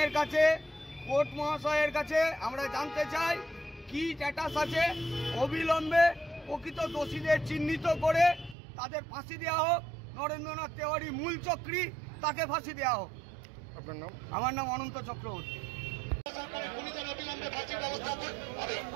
কাছে, কোর্ট মহাশয়ের কাছে আমরা জানতে চাই কি স্ট্যাটাস আছে। অবিলম্বে প্রকৃত দোষীদের চিহ্নিত করে তাদের ফাঁসি দেওয়া হোক। নরেন্দ্রনাথ তিওয়ারি মূল চক্রী, তাকে ফাঁসি দেওয়া হোক। আপনার নাম? আমার নাম অনন্ত চক্রবর্তী।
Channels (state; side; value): drops out; left; at 8.6 s